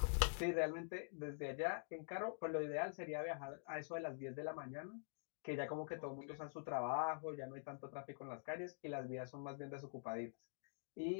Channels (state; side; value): silent; right; digital silence